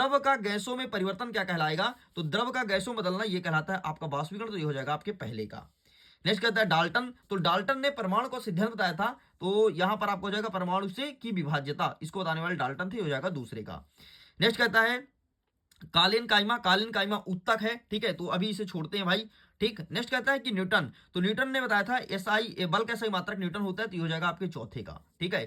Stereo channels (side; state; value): both; identical; correlation 1.00